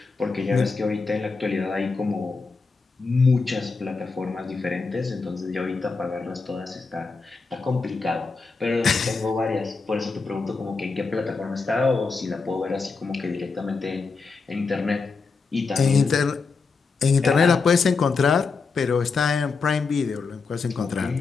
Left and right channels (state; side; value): quieter; right; 4.5 dB